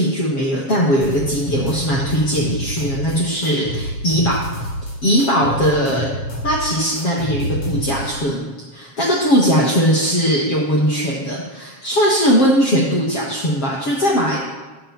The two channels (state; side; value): late; right; 7.4 ms